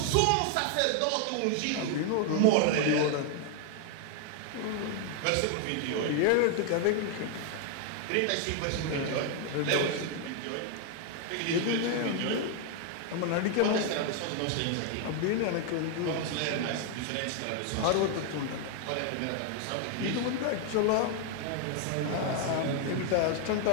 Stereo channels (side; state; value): both; different; correlation 0.00